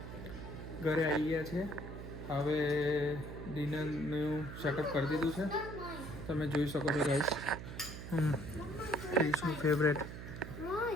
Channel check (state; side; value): noise; right; hum, 9 dB below the sound